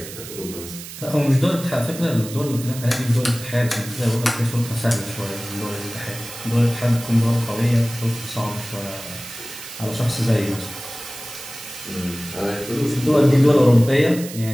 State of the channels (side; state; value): right; noise; hiss, 12 dB below the sound